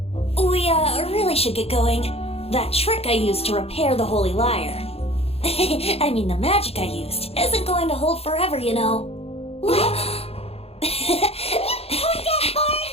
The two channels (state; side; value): late; right; 0.29 ms